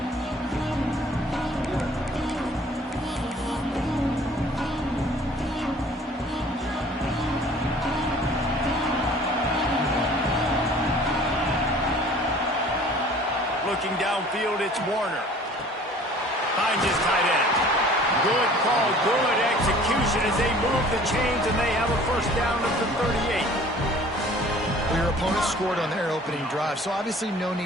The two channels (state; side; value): normal; both; correlation 0.50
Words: Looking downfield, it's Warner. Finds his tight end. Good call, good execution as they move the chains and they have a first down at the 38. Well, your opponent scored on their opening drive, so obviously no